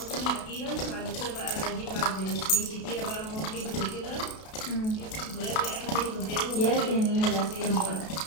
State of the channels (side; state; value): right; late; 32 ms